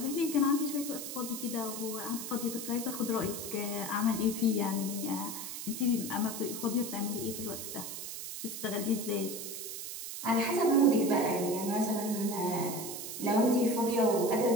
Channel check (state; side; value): noise; right; hiss, 7 dB below the sound